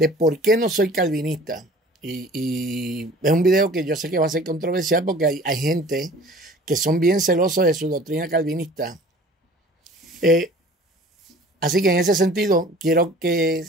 por qué no soy calvinista. Y es un video que yo sé que va a ser controversial porque hay gente que son bien celosos de su doctrina calvinista. Así que en ese sentido quiero que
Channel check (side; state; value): both; normal; correlation 0.47